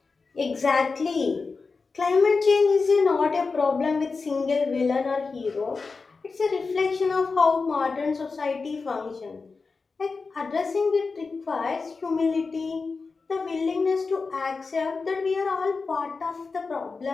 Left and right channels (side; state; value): right; quieter; 4.4 dB